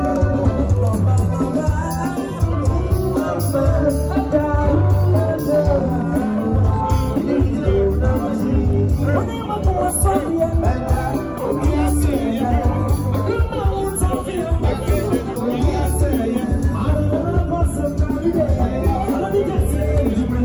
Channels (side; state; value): both; identical; correlation 1.00